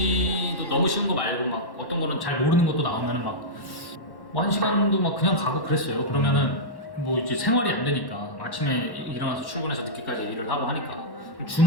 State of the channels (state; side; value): late; right; 1.1 ms